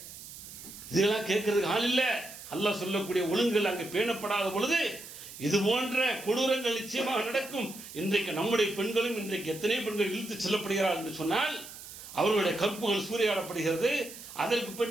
இதெல்லாம் கேட்கறதுக்கு ஆள் இல்ல. அல்லாஹ் சொல்லக்கூடிய ஒழுங்குகள் அங்கு பேணப்படாத பொழுது இது போன்ற கொடூரங்கள் நிச்சயமாக நடக்கும். இன்றைக்கு நம்முடைய பெண்களும் இன்றைக்கு எத்தனை பெண்கள் இழுத்து செல்லப்படுகிறார்கள் என்று சொன்னால் அவர்களுடைய கற்புகள் சூறையாடப்படுகிறது. அதற்கு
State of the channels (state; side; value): noise; right; hiss, 14 dB below the sound